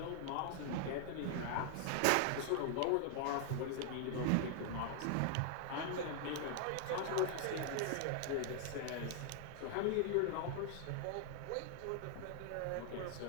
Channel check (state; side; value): different; both; correlation 0.00